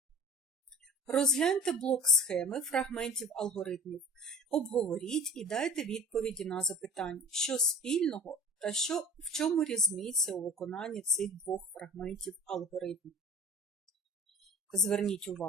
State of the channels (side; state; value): both; normal; correlation 0.41